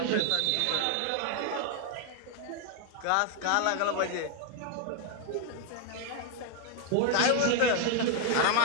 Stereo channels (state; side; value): different; both; correlation 0.01